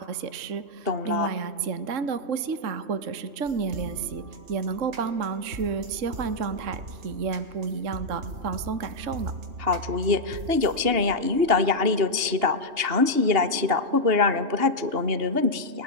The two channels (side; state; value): left; late; 2.8 ms